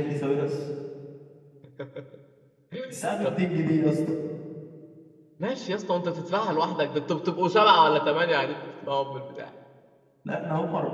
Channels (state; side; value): identical; both; correlation 1.00